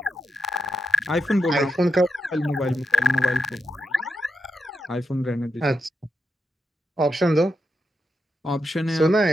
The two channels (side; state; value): both; normal; correlation 0.87